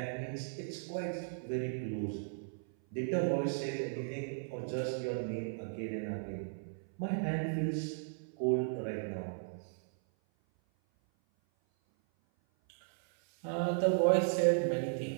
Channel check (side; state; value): left; silent; 54 dB below the other